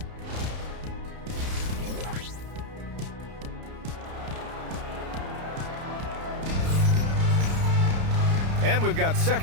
And we've got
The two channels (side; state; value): left; late; 31 ms